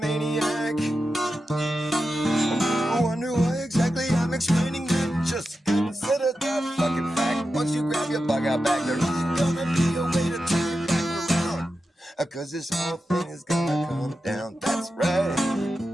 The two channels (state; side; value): normal; both; correlation 0.90